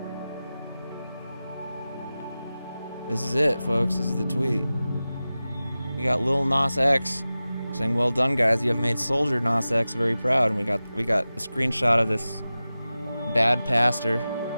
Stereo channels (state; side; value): inverted; both; correlation -0.95